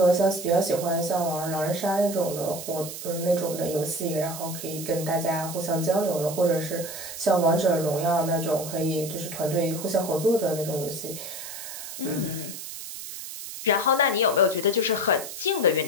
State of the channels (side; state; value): right; noise; hiss, 10 dB below the sound